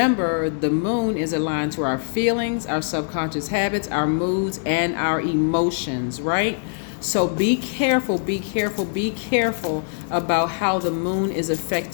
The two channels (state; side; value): silent; right; 64 dB below the other